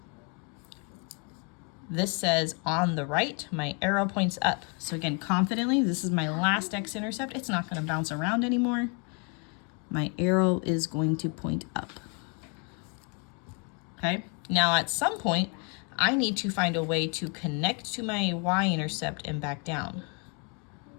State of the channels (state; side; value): quieter; right; 34.4 dB